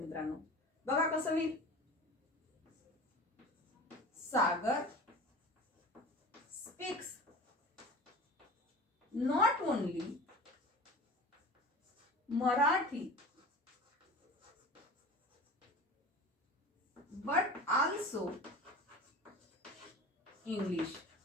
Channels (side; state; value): both; normal; correlation 0.36